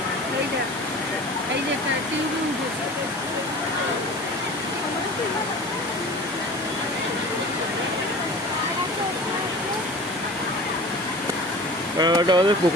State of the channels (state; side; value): normal; both; correlation 0.40